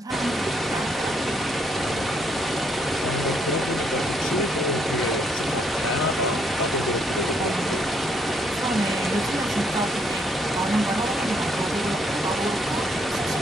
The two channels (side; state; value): both; normal; correlation 0.71